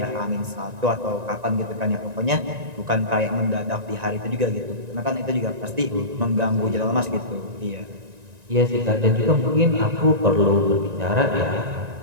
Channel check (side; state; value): left; late; 1.9 ms